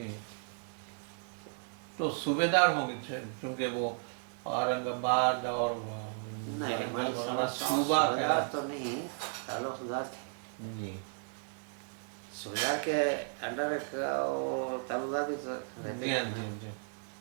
تو صوبے دار ہوں گے چونکہ وہ اورنگ آباد اور ورنگل وغیرہ صوبہ کا تو نہیں, تعلقدار تھے. جی. صوبیدار کے انڈر تعلقدار بھی جی. ہاں. جی. جی.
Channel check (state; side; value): silent; left; 55 dB below the other